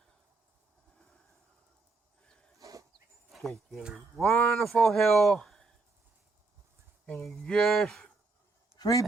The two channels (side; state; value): left; quieter; 3.7 dB